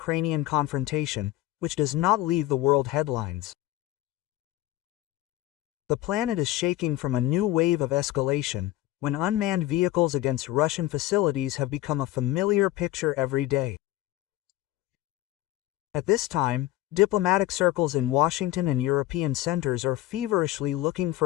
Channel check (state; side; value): quieter; right; 15.8 dB